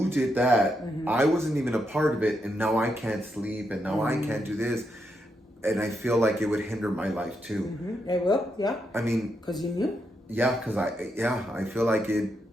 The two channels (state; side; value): normal; both; correlation 0.82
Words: did that, I wasn't even a part of it, and now I can't sleep, and now I can't do this. And I feel like it would hinder my life too. It will, yeah. I mean, because you knew. Yeah, because I feel like it,